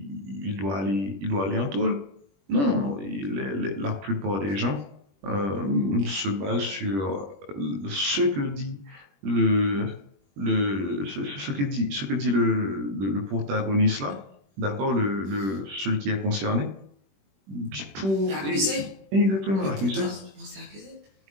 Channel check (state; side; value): late; left; 21 ms